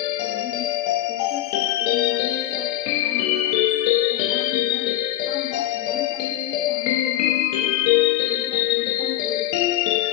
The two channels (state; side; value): quieter; right; 14.0 dB